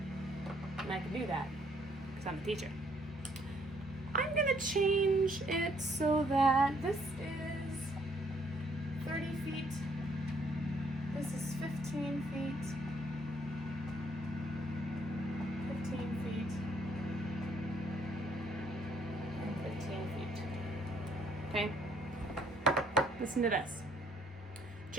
and I can do that because I'm a teacher. I'm going to change it so that this is 30 feet, this is 15 feet, 15 feet, and 15 feet. Okay? Listen to this.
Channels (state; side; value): normal; both; correlation 0.66